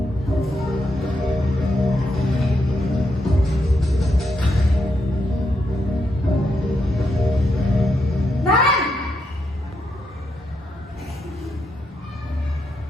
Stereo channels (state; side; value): normal; both; correlation 0.81